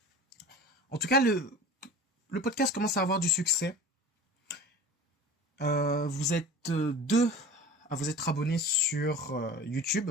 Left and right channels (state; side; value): normal; both; correlation 0.37